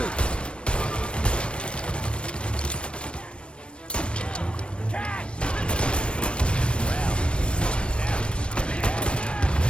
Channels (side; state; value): right; late; 0.058 ms